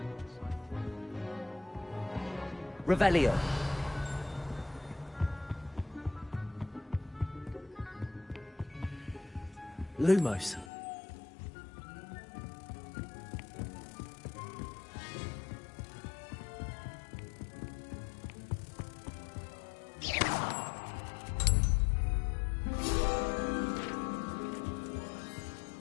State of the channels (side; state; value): right; drops out; at 10.7 s